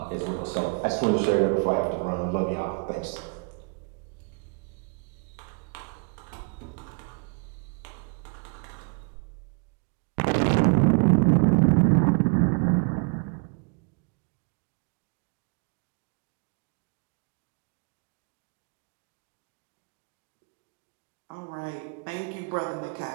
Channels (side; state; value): left; quieter; 36.2 dB